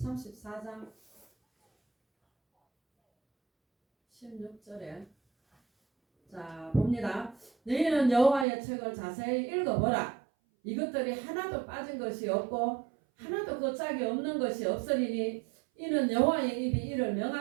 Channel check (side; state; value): left; drops out; at 8.5 s